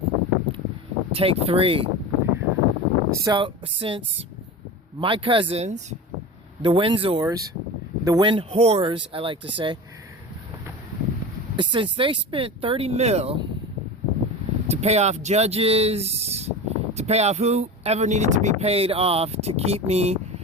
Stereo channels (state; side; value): normal; both; correlation 0.29